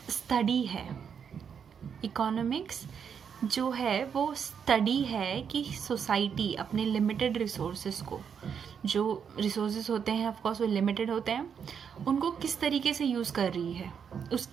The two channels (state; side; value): quieter; left; 7.2 dB